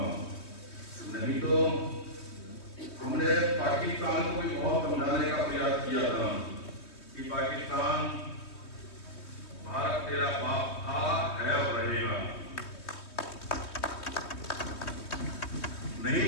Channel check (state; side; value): late; right; 3.2 ms